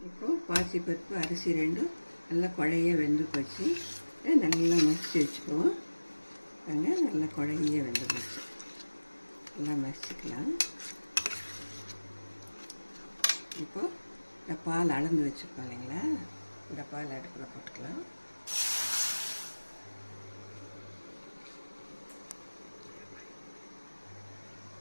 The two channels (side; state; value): both; inverted; correlation -1.00